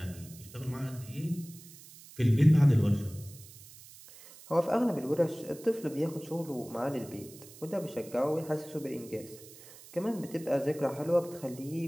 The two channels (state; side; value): noise; right; hiss, 19 dB below the sound